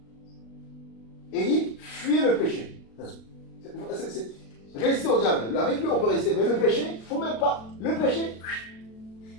et fuyez le péché. Restez au diable. Avec lui, on peut rester. Mais le péché, il ne faut même pas. Le péché,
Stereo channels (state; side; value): late; right; 36 ms